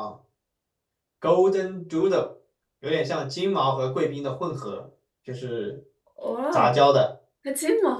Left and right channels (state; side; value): identical; both; correlation 1.00